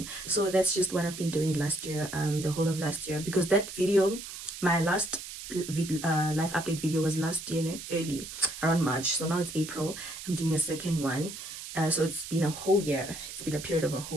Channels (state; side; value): noise; right; hiss, 10 dB below the sound